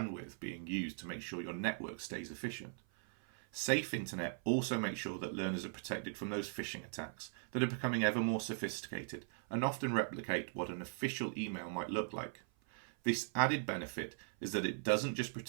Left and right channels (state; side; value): silent; left; 51 dB below the other